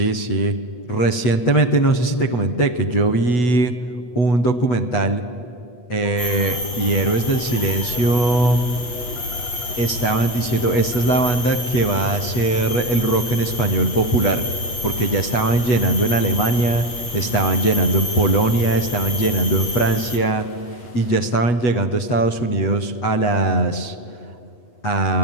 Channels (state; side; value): late; right; 8.3 ms